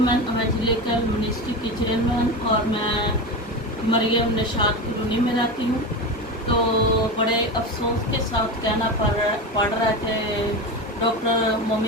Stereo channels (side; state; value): both; normal; correlation 0.22